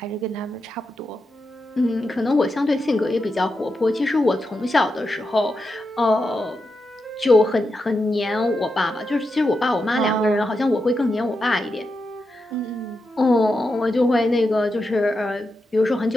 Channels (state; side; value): normal; both; correlation 0.87